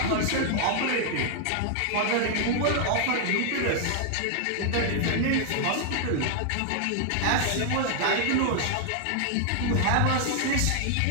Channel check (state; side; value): different; both; correlation 0.00